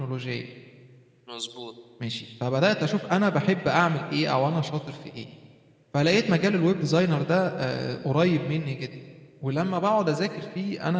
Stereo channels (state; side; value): identical; both; correlation 1.00